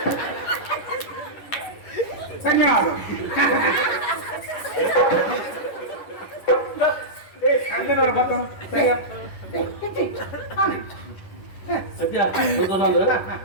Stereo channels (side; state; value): right; late; 10 ms